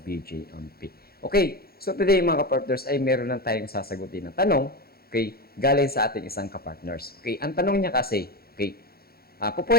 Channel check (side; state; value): right; late; 0.44 ms